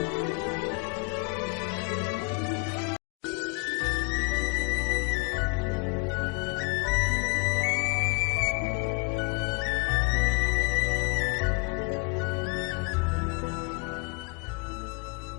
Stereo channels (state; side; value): quieter; right; 31.3 dB